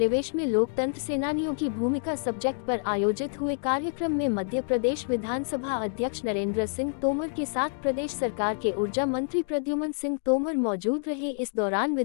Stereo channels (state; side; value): silent; right; digital silence